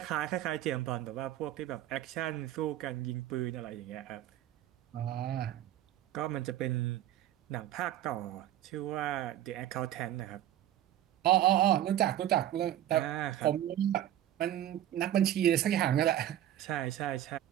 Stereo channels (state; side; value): quieter; left; 12.3 dB